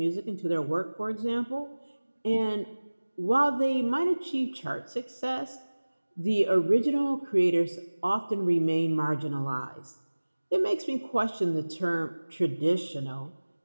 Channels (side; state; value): both; inverted; correlation -1.00